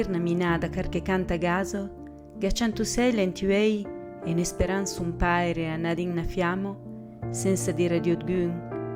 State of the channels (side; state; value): both; identical; correlation 1.00